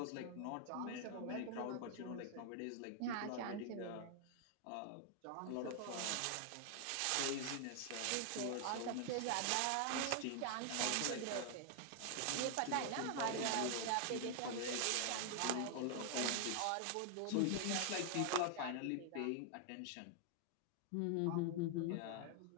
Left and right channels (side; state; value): both; different; correlation 0.00